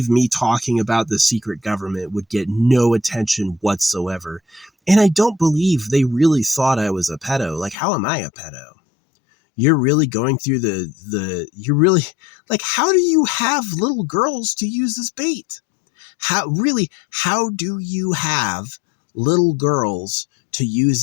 me talking about the secret government would get no attention whatsoever. And I don't believe they really thought I was a pedo. Like, how am I a pedo? You're really going through you're really, like, how do you have little girls to use as bait? How do you have little girls to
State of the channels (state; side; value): drops out; right; at 7.8 s